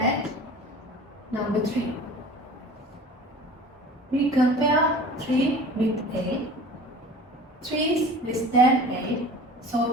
number 3. We compare 3 with 8. 3 is less than 8,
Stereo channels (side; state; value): both; normal; correlation 0.41